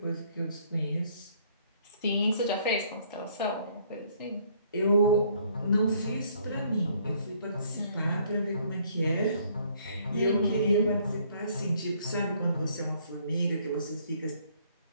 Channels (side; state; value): both; inverted; correlation -0.63